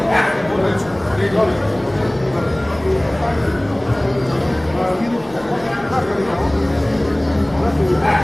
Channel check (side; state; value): right; noise; rumble, 24 dB below the sound